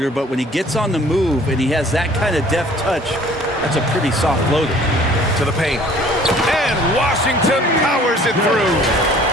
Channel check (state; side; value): normal; both; correlation 0.53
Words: but when he gets on the move and he has that kind of deft touch, that's a pretty soft floater. To the paint. And Washington powers it through.